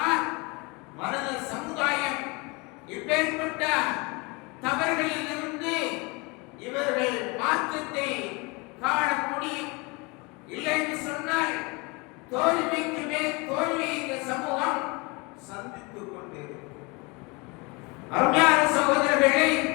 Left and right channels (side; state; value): right; quieter; 27.6 dB